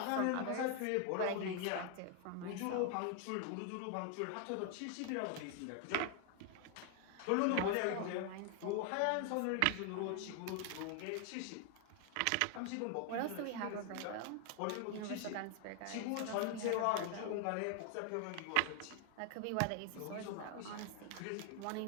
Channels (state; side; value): different; both; correlation 0.00